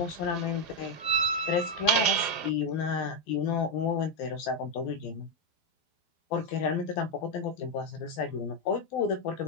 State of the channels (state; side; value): late; right; 12 ms